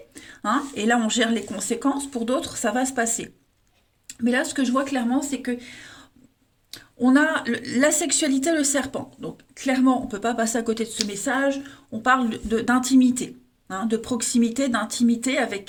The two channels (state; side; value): identical; both; correlation 1.00